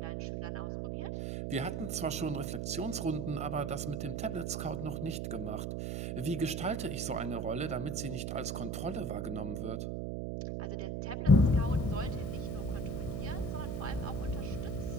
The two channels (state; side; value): noise; right; hum, 2 dB below the sound